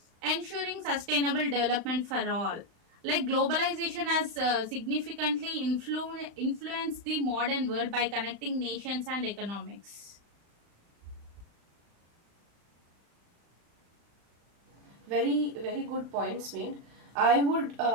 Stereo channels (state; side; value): late; left; 35 ms